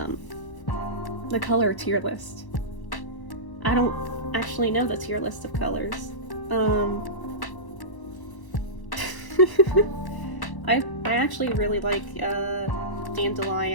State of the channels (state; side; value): late; right; 1.1 ms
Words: the color tier list. I don't actually know the tier list of colors. I actually really like